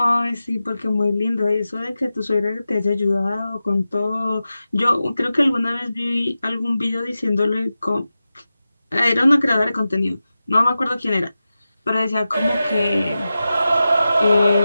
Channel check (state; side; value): inverted; both; correlation -0.93